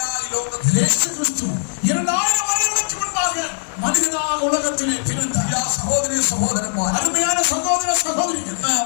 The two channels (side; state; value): right; silent; digital silence